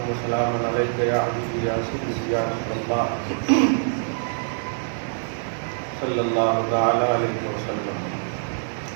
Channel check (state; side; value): silent; left; 62 dB below the other